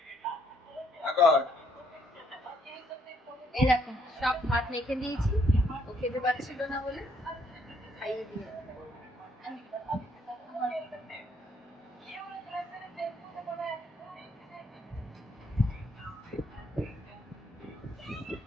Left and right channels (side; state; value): both; normal; correlation 0.70